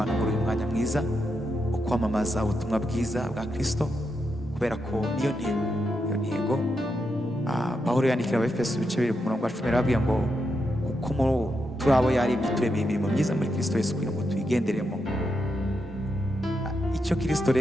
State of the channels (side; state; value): both; normal; correlation 0.84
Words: muri uyu mwanya mwiza wo kwamamaza ubutumwa bwiza bwa Kristo, kubera ko niyo ntego. Pawulo yandikira Abefeso ibice 2 ku murongo wa 10 arababwira ngo kuko turi abo yaremye turemeye imirimo myiza muri Kristo Yesu, kugira ngo tuyigenderemo. Icyo Kristo